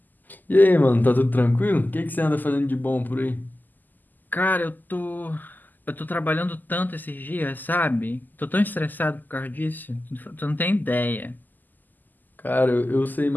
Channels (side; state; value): right; late; 0.086 ms